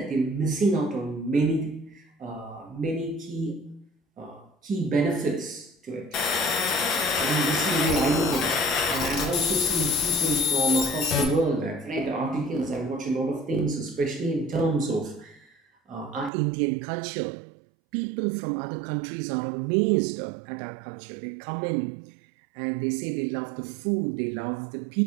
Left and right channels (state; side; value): drops out; left; at 16.3 s